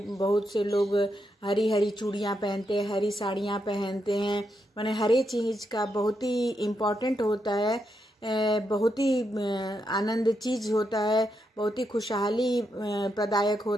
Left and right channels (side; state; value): both; normal; correlation 0.82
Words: से लोग हरी हरी चूड़ियाँ पहनते हैं, हरी साड़ियाँ पहनते हैं। माने हर एक चीज़ का बहुत ही इम्पोर्टेंट होता है, बहुत ही आनंद चीज होता है, बहुत ही खुशहाली प्रदायक